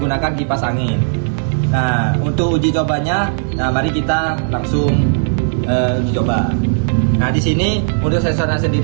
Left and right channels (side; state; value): left; silent; 63 dB below the other